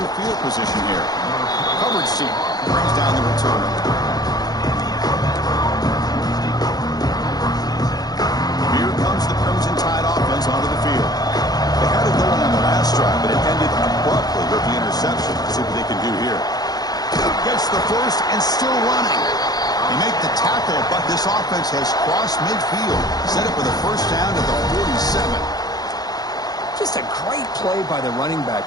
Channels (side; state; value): right; late; 0.19 ms